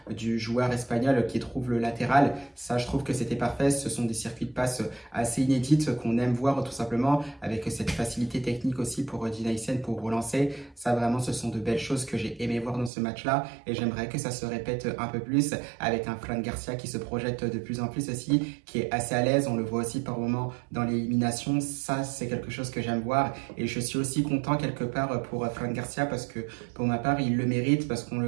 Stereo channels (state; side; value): drops out; left; at 12.9 s